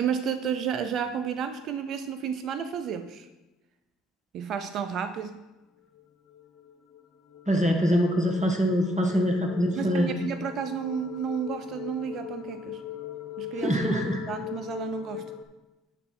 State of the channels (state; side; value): normal; both; correlation 0.66